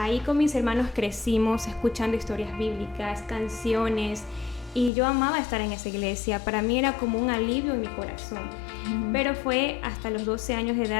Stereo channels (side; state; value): right; drops out; at 4.9 s